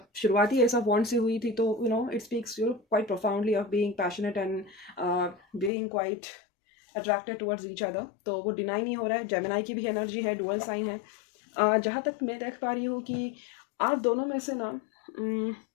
शुरुआती ऐसा बॉन्ड से हुई थी, तो it speaks quite profoundly of being passionate and being quite attracted towards each other, तो वो डिनाई नहीं हो रहा है। जेमिनाई की भी एनर्जी है, डुअल साइन है। जहाँ तक मैं देख पा रही हूँ कि आप दोनों में से ना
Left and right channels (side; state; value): right; drops out; at 5.7 s